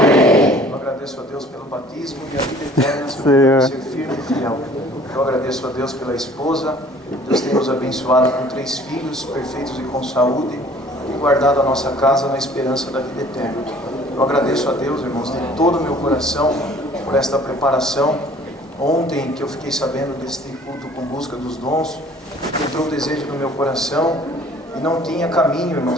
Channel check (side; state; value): both; normal; correlation 0.52